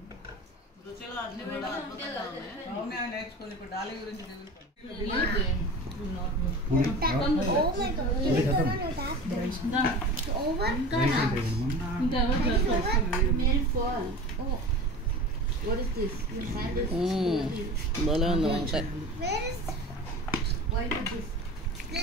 రుచిలో అన్ని కూడా అద్భుతంగా ఉన్నాయి. నేర్చుకుంది ఇప్పుడు డాలి గురించి. భలే ఉంది వంకాయ.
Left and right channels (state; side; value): normal; both; correlation 0.34